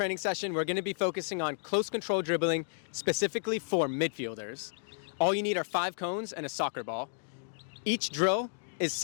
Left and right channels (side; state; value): right; silent; digital silence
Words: session, we're going to be focusing on close control dribbling, specifically for midfielders. All you need are 5 cones and a soccer ball. Each drill is